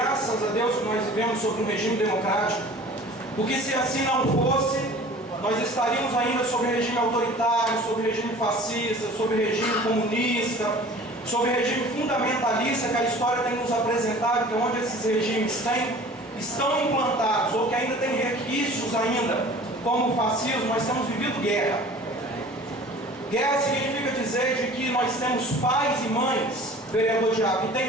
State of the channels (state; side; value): normal; both; correlation 0.45